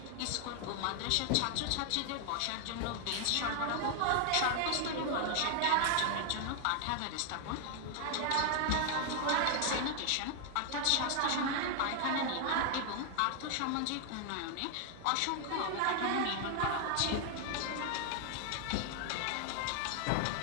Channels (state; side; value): different; both; correlation 0.00